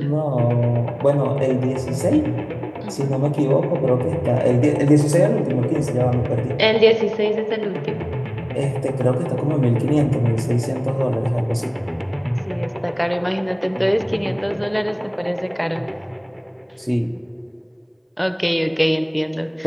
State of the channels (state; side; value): identical; both; correlation 1.00